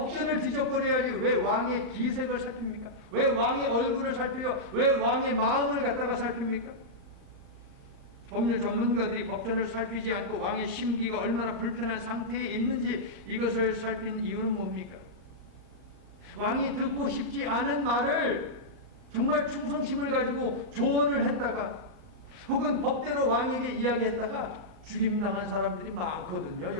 뒤적거려야지. 왜 왕의 기색을 살핍니까? 왜 왕의 얼굴을 살펴요? 왜 왕의 마음을 갖다가 살핍니까? 법률 전문가들이 법전을 살피지 않고 왕의 심기가 얼마나 불편한 상태에 있는지 이것을 살핀 이유는 뭡니까? 왕이 듣고 싶지 않은 말을 정말 충성심을 가지고 조언을 했다가 혹은 법대로 왕에게 이야기했다가 죽임당한 사람들이 많거든요.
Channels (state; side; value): late; left; 38 ms